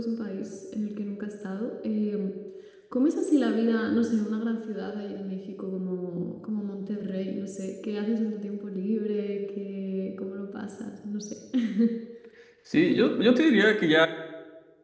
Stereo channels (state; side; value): identical; both; correlation 1.00